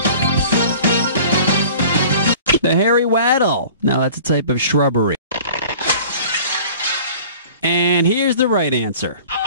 The hairy waddle. Now that's a type of shrubbery. And here's the right answer.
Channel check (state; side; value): inverted; both; correlation -0.45